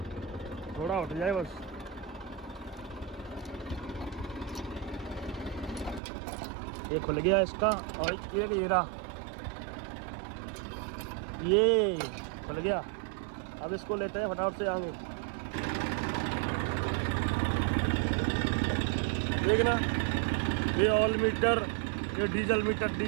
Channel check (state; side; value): drops out; left; at 6.0 s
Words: थोड़ा उठ जाए बस। ये खुल गया इसका, और ये रहा, ये खुल गया। अब इसको लेते हैं फटाफट से आगे। देखना, ये ऑयल मीटर, ये डीजल मीटर,